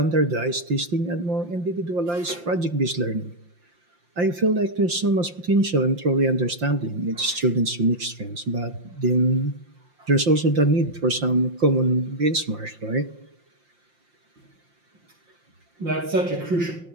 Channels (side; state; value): left; late; 5.7 ms